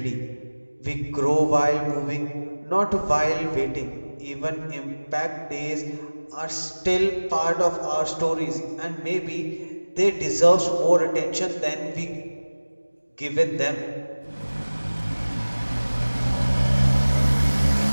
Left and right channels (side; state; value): both; inverted; correlation -1.00